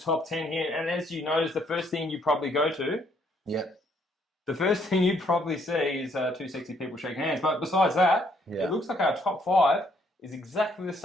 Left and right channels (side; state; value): both; normal; correlation 0.69